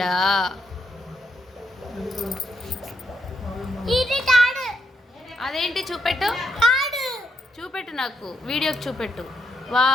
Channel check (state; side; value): normal; both; correlation 0.79